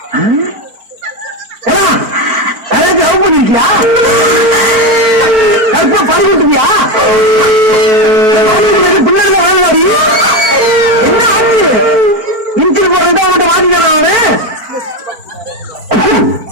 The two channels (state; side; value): late; left; 4.5 ms